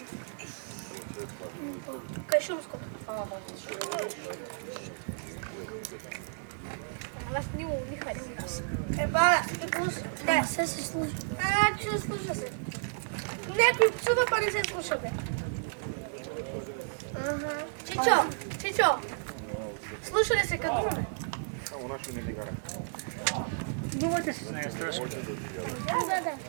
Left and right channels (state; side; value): silent; left; digital silence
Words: Кай шумското. Аз не харесвам нас. Еба, не, се слуша. Че слуша се. Некои псува, па не се слуша, бе. Чичо, слуша ли се като ме? Само нашо не дигара. Думате се. Не, страшно. Да.